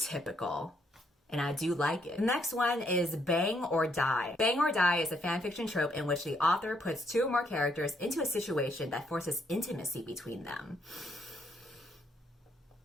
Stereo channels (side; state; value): both; normal; correlation 0.73